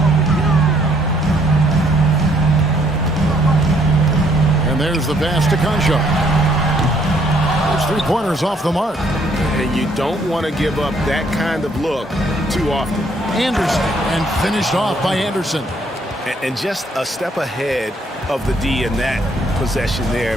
And there's the pass to Concho. There's 3-pointers off the mark. And you don't want to give up that kind of look too often. Anderson, and finished off by Anderson. And just a step ahead of the D in that possession there,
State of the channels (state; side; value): normal; both; correlation 0.67